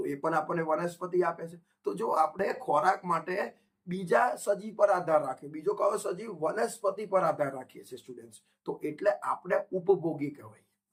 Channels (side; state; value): both; identical; correlation 1.00